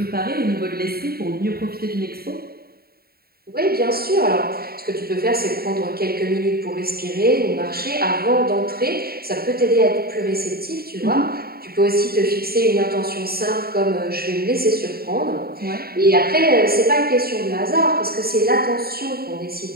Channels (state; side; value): late; left; 0.45 ms